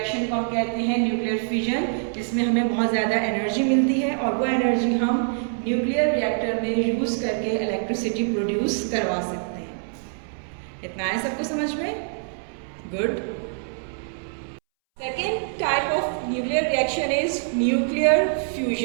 को हम कहते हैं न्यूक्लियर फिजन, जिसमें हमें बहुत ज़्यादा एनर्जी मिलती है और वो एनर्जी हम न्यूक्लियर रिएक्टर में यूज़ करके इलेक्ट्रिसिटी प्रोड्यूस करवा सकते हैं। इतना है सबको समझ में? Good. Second type of nuclear reaction is nuclear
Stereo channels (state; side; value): silent; left; 62 dB below the other